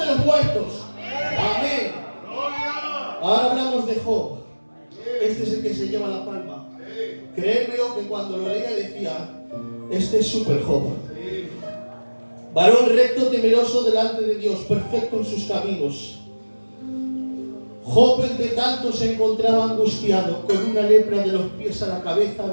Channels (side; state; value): both; inverted; correlation -1.00